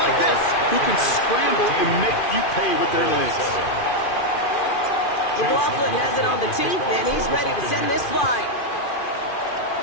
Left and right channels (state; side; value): late; right; 2.4 ms